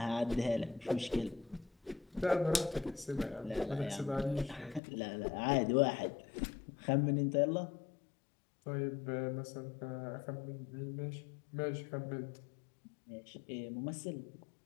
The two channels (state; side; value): drops out; right; at 4.8 s